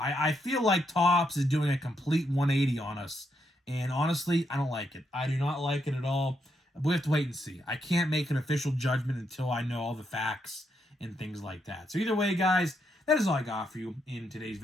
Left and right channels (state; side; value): normal; both; correlation 0.79